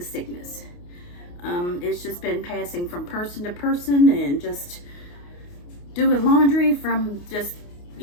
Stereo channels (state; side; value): late; right; 28 ms